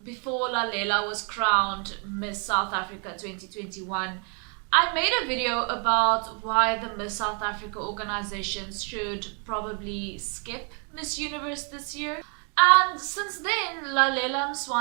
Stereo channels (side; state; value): left; quieter; 38.5 dB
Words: before Lalela was crowned Miss South Africa 2021, I made a video about why the Miss South Africa organizations should probably skip Miss Universe this year. And since then, Lalela